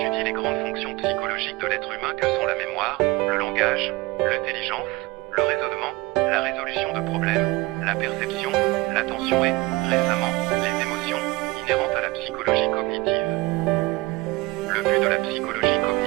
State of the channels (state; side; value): quieter; left; 21.9 dB